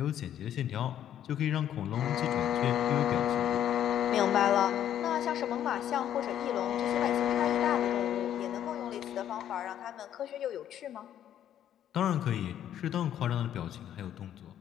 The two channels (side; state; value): right; quieter; 10.7 dB